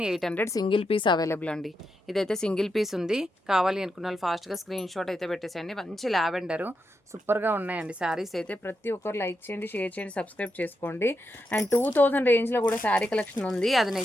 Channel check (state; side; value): normal; both; correlation 0.85